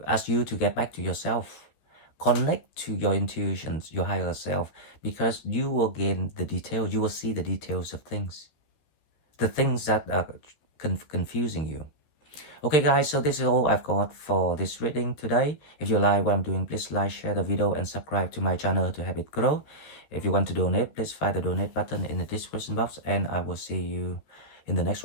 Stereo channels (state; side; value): late; right; 14 ms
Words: ask you to get back to yourself, connect to your intuitions, your higher self, because you will gain the details. You will see the details of things, the things that are confusing you. Okay guys, so this is all I've got for this reading today. If you like what I'm doing, please like, share the video, and subscribe to my channel to help it grow. If you want to donate, please find the donate button in the description box, and I will see you in the next